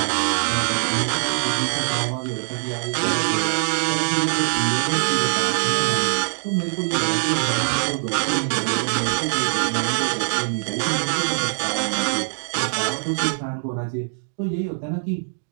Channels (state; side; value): silent; left; digital silence